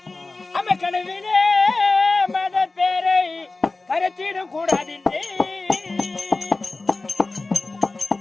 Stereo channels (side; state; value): right; quieter; 3.4 dB